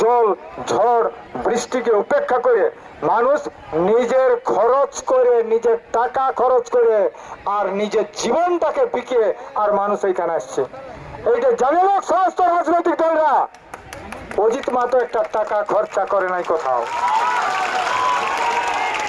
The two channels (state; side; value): identical; both; correlation 1.00